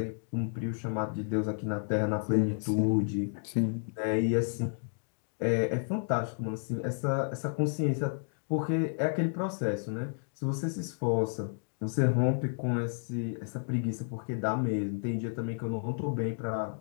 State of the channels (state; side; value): silent; right; digital silence